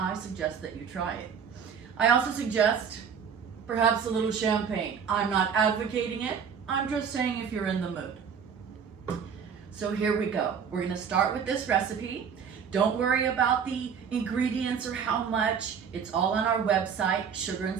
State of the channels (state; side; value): quieter; left; 7.0 dB